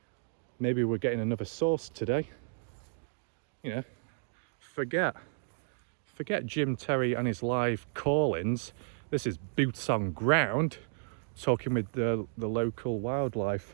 Maybe we're getting another source today. You know, forget Jim Terry and his live call-ins. This is boots on ground, talking with the local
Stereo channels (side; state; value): left; silent; digital silence